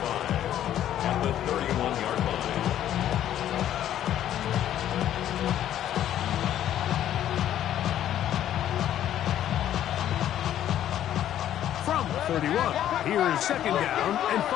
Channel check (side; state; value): right; quieter; 11.4 dB